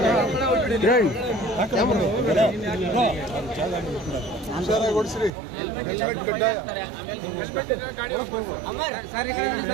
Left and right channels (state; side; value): drops out; left; at 5.3 s